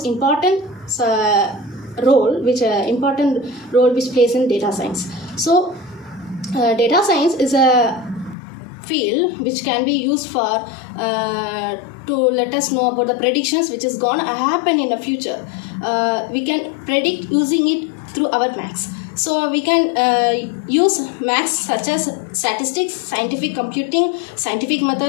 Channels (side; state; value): right; drops out; at 8.3 s